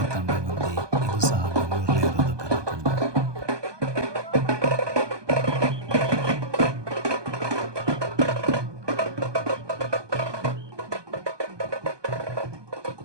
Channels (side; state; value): left; late; 1.2 ms